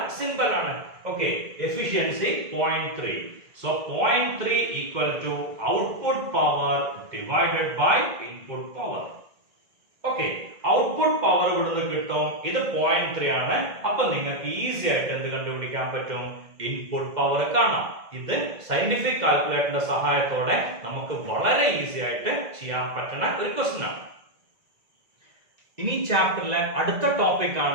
സിമ്പൽ ആണ്. Okay, efficiency 0.3. So 0.3 equal to output power divided by input power. Okay, output power ഇവിടുന്ന് കിട്ടും. ഇത് 0.3 ആണ്. അപ്പൊ നിങ്ങൾക്ക് ഈസി ആയിട്ട് എന്ത് കണ്ടുപിടിക്കാൻ പറ്റും? ഇൻപുട്ട് പവർ കാണാം. ഇത് സയന്റിഫിക് കാൽക്കുലേറ്ററിന്റെ സഹായത്തോടെ നമുക്ക് വളരെ ഈസി ആയിട്ട് ചെയ്യാൻ പറ്റുന്ന ഒരു ക്വസ്റ്റ്യൻ ആണ്. ഇനി ചാപ്റ്ററിലെ അടുത്ത ടോപ്പിക്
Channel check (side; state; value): left; late; 2.1 ms